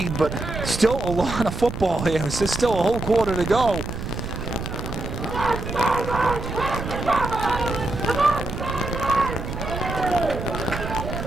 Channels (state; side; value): noise; right; rumble, 6 dB below the sound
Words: but still a lot of football here. There's still a whole quarter to go.